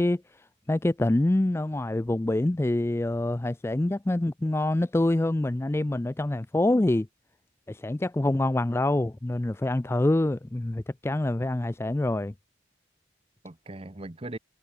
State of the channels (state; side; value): normal; both; correlation 0.93